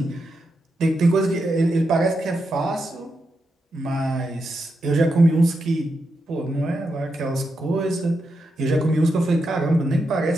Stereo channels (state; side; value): normal; both; correlation 0.85